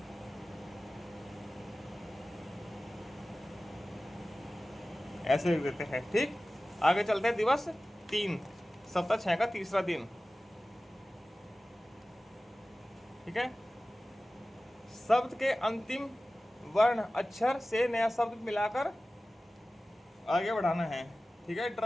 ऐसे लिख देते हैं। ठीक, आगे चलते हैं। दिवस 3, सप्ताह 6 का तीसरा दिन। ठीक है, शब्द के अंतिम वर्ण अक्षर से नया शब्द मिलाकर आगे बढ़ाना है। ठीक है,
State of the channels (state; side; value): normal; both; correlation 0.96